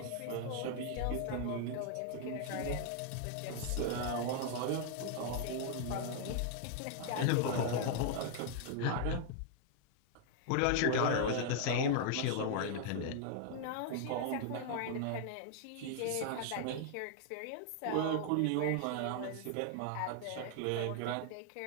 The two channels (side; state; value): both; different; correlation 0.00